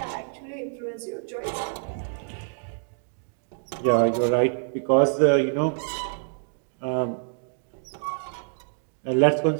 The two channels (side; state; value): left; silent; digital silence